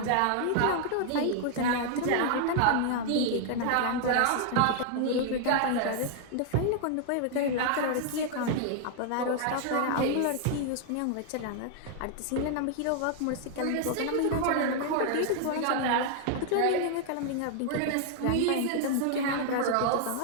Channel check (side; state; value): both; different; correlation 0.00